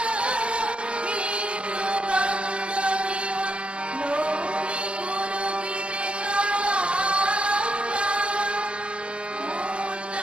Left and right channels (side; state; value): left; late; 0.058 ms